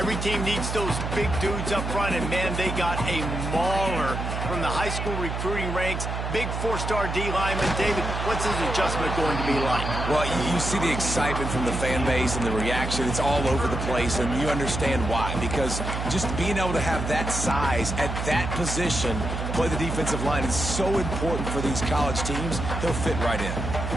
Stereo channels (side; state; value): right; noise; hum, 3 dB below the sound